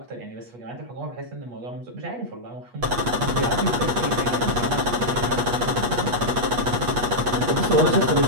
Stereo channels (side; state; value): left; late; 8.3 ms